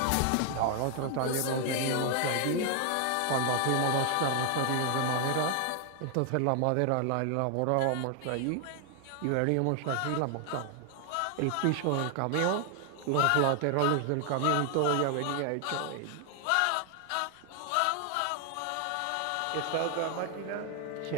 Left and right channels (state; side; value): different; both; correlation 0.00